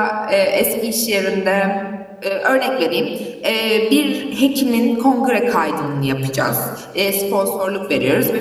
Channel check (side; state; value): both; identical; correlation 1.00